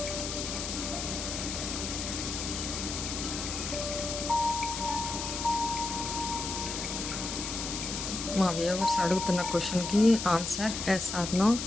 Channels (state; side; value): noise; left; hiss, 4 dB below the sound